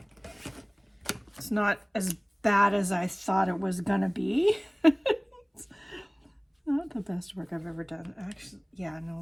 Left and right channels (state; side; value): identical; both; correlation 1.00